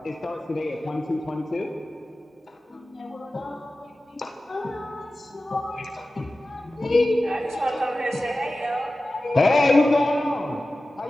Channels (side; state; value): both; normal; correlation 0.95